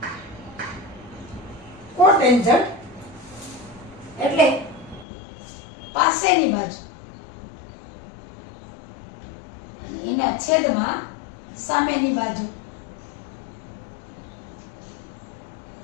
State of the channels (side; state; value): right; drops out; at 5.1 s